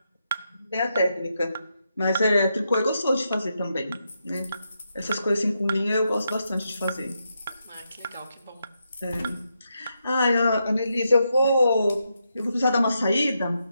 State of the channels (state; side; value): inverted; both; correlation -0.83